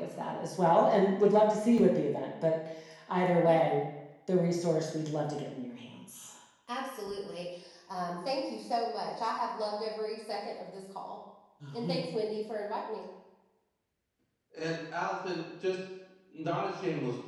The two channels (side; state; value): both; identical; correlation 1.00